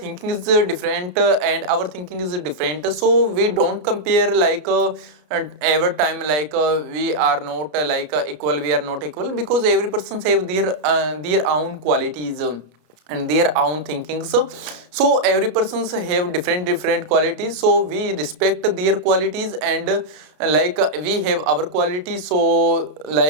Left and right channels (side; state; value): left; late; 33 ms